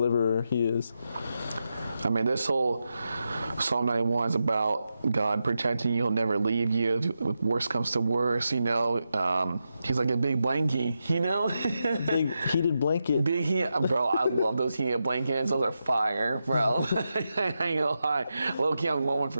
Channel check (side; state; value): both; inverted; correlation -0.88